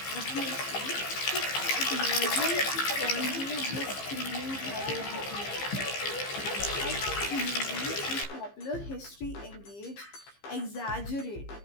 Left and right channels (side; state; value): right; late; 15 ms